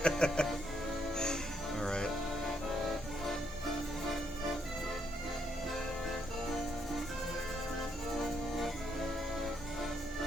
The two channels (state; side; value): normal; both; correlation 0.75